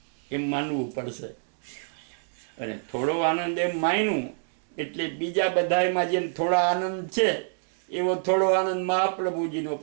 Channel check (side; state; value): left; silent; digital silence